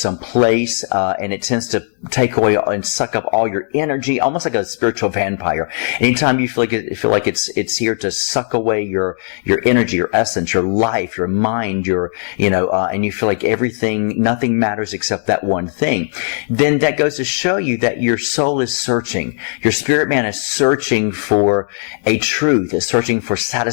place, and it tends to take away and suck up all your energy, almost like a spiritual vampire. Anytime you feel like it's here to suck away your energy, your essence, your life, your mind, and you feel like nothing matters except that one thing, then that goes to show you that your soul is searching. Your spirit man is searching for a truth, is searching for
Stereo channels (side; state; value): right; silent; digital silence